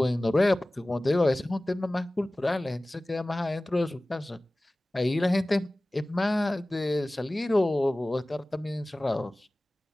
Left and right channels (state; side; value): normal; both; correlation 0.98